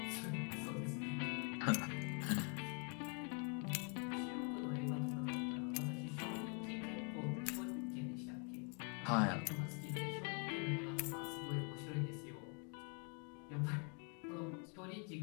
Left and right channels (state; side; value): quieter; right; 38.4 dB